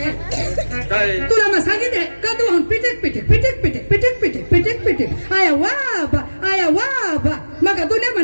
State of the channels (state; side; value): inverted; both; correlation -1.00